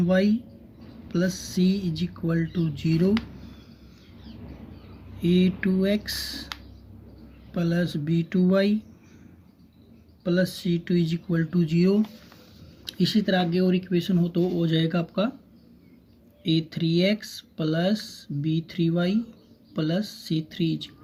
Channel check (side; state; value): both; identical; correlation 1.00